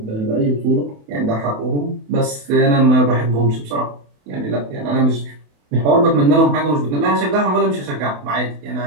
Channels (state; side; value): late; left; 28 ms